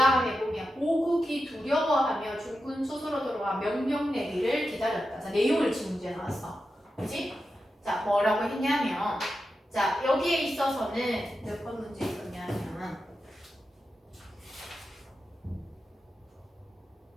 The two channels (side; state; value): both; normal; correlation 0.89